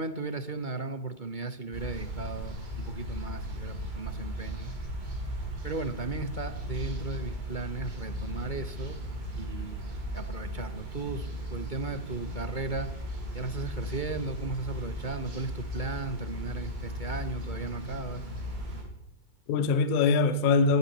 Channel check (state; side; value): late; right; 2.2 ms